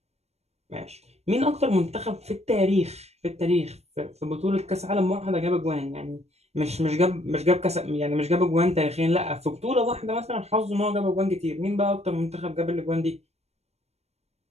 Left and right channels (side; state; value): left; late; 0.31 ms